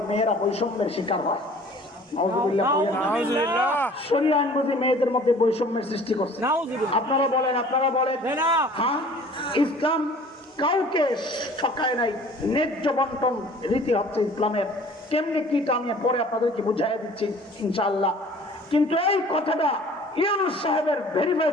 মেয়েরা বৈষম্যের শিকার হয়। নাউজুবিল্লাহ বলেন না। নাউজুবিল্লাহ। শরিয়া আইন বুঝি মেয়েদের মধ্যে বৈষম্যের সৃষ্টি করছে। আপনারা বলেন হ্যাঁ, ইসলাম কাউকে ঠকায় নাই। ন্যায্য বন্টন রীতি হচ্ছে ইসলামের। কেমনি কি আমি পরে আপনাদেরকে বুঝাই দিচ্ছি ইনশাআল্লাহ। কিন্তু এই কথাটা ইউনূস সাহেবের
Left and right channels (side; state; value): both; normal; correlation 0.49